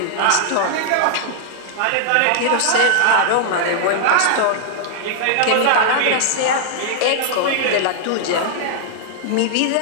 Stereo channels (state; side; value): different; both; correlation -0.01